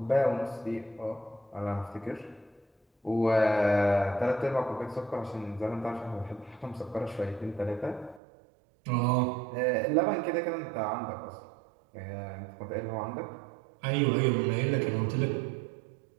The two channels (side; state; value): left; drops out; at 8.2 s